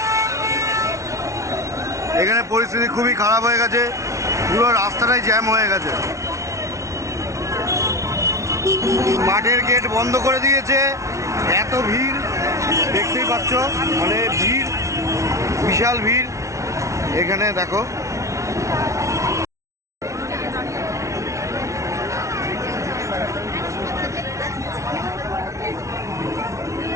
এখানে পরিস্থিতি খুবই খারাপ হয়ে গেছে, পুরো রাস্তাটাই জ্যাম হয়ে গেছে। মাঠের গেট বন্ধ করে দিয়েছে, এত ভিড় দেখতেই পাচ্ছ, মানে ভিড়, বিশাল ভিড়। এখানে দেখো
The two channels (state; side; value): late; left; 0.14 ms